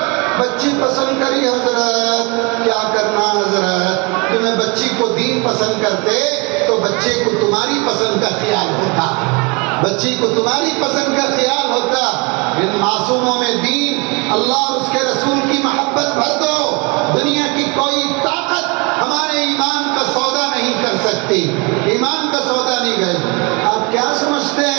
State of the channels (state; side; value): quieter; left; 29.3 dB